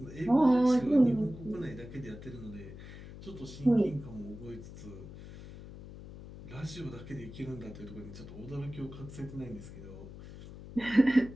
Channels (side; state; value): left; noise; hum, 14 dB below the sound